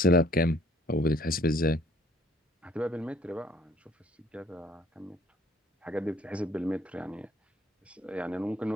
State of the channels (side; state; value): both; normal; correlation 0.60